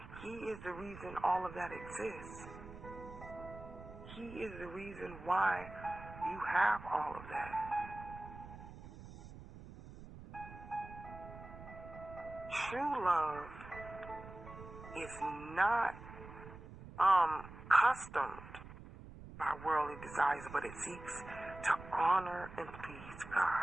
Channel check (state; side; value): noise; right; rumble, 14 dB below the sound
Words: He is the reason all of that exists. He is the reason why you have all of that. True love is not customed by worldly desires, but it seeks to honor and please